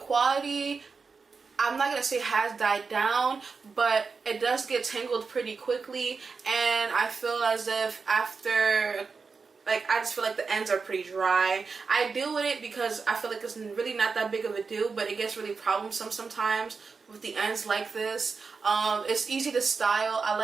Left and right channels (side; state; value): left; quieter; 4.9 dB